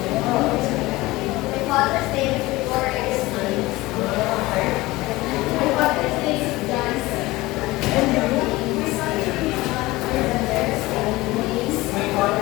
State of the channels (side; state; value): right; quieter; 19.8 dB